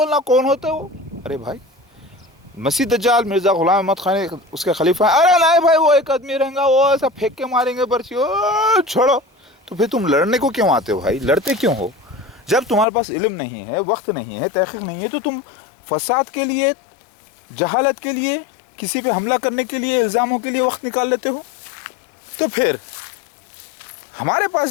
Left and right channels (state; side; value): drops out; right; at 12.9 s